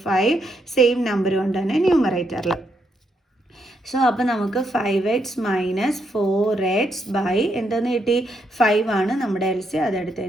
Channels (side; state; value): both; normal; correlation 0.78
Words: 5 സെയിം നമ്പർ കൊണ്ട് തന്നെ ന്യൂമറേറ്ററിൽ. സോ അപ്പോൾ നമുക്ക് 5x മൈനസ് 4x ബൈ എന്തെന്ന് കിട്ടി? 5 ആണ് നമ്മുടെ എൽസിയം. അതെടുത്ത്